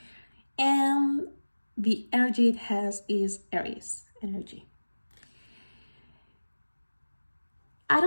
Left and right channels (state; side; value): inverted; both; correlation -1.00